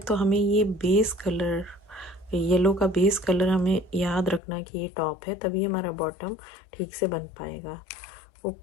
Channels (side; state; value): right; drops out; at 4.4 s